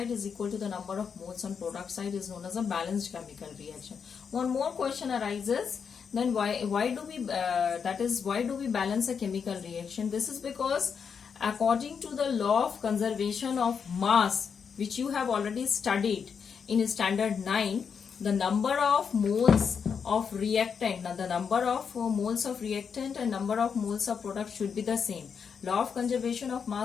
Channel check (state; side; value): quieter; right; 6.5 dB